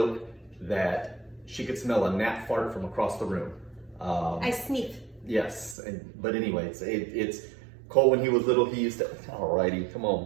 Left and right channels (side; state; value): left; drops out; at 5.8 s